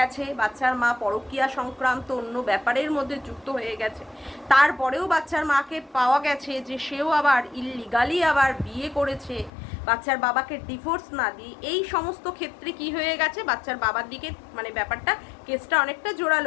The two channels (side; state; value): right; drops out; at 9.5 s